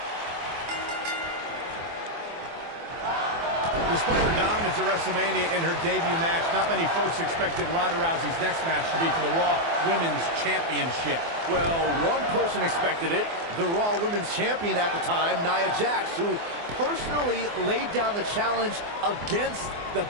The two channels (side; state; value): left; late; 24 ms